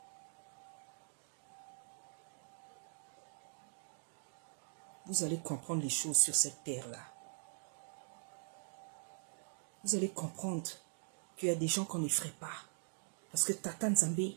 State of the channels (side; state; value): left; silent; digital silence